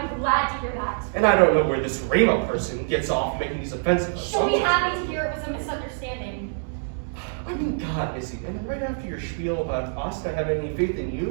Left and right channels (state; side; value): silent; left; digital silence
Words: glad to hear that. And I don't know where this Rima person gets off making these offensive She'll be assumptions. happy to hear it was a misunderstanding. I mean, God, Izzy, and right after your spiel about us not having any faith in